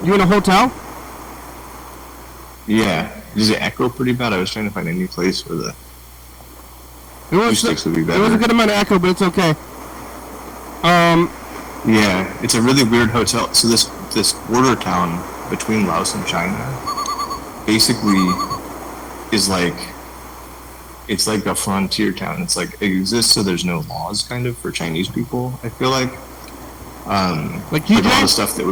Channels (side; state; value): both; identical; correlation 1.00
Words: in a hotel? Yeah. Does it echo pretty bad? I was trying to find any place where the It was acoustics would be it was a better. good amount of echo, but it's okay. Yeah, it's a really weird hotel. So this border town between Laos and China basically is like, it's like a frontier town. It's like, it exists so there's no laws kind of for Chinese people, I feel like. Like all the stuff that